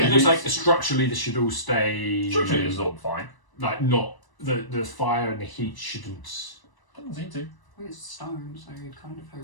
it it looks is- like structurally this should all stay. structurally it's all fine. Like not the fire and the heat shouldn't. Doesn't seem to. Well, it's stone, so you'd kind of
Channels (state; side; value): late; right; 1.0 ms